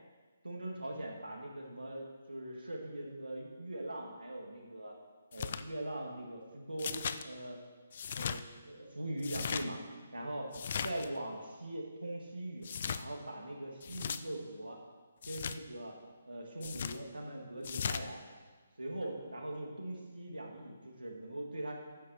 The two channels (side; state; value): both; inverted; correlation -0.83